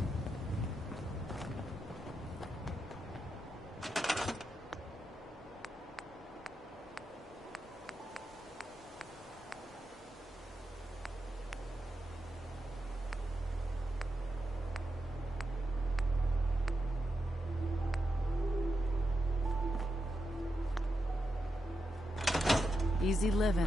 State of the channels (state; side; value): normal; both; correlation 0.87